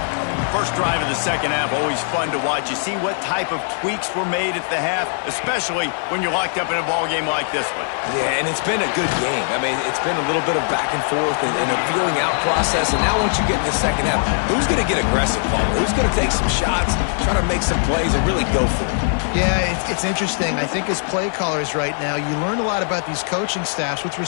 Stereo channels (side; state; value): right; silent; 65 dB below the other